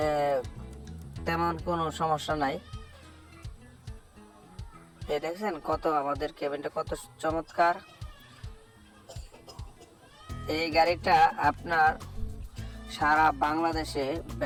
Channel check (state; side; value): identical; both; correlation 1.00